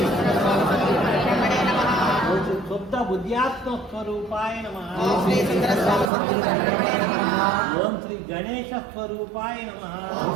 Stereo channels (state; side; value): drops out; left; at 6.1 s